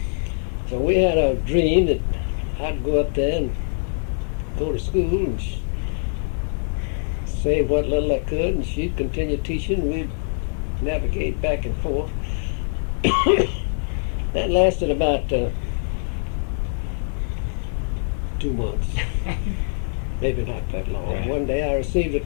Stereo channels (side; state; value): right; silent; 63 dB below the other